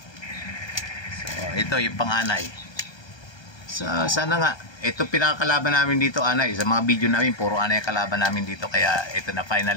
So, ito yung pang-anay. So, sana nga. Ito pinakakalaban namin dito, anay. Sa mga video namin, puro anay kalaban namin dito. Kaya ito na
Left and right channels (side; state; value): right; late; 1.2 ms